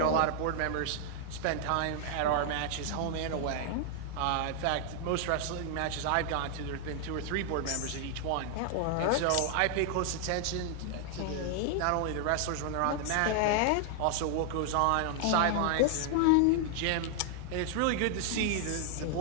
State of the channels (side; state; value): both; different; correlation 0.00